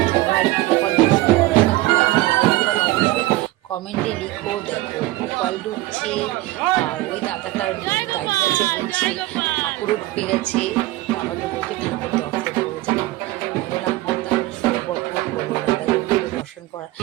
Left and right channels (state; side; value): quieter; left; 18.3 dB